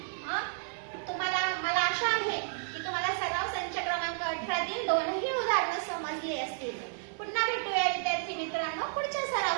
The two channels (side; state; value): left; silent; digital silence